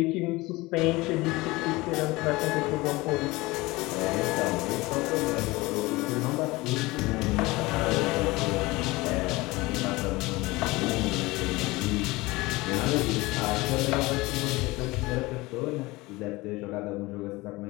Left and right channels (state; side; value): quieter; right; 21.6 dB